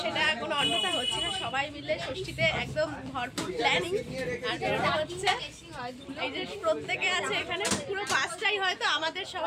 সেটা কোনো অন্যথা হচ্ছে না। সবাই মিলে ষষ্ঠীতে একদম ভরপুর প্ল্যানিং, আর এটা হচ্ছে এই যে প্রত্যেকে আছে এখানে, পুরো বাসটাই হয়তো আমাদের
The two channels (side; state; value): both; identical; correlation 1.00